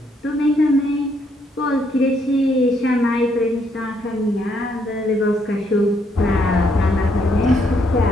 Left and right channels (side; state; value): both; normal; correlation 0.72